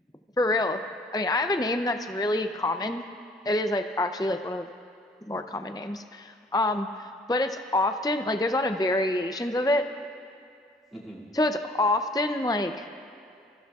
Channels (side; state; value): both; normal; correlation 0.56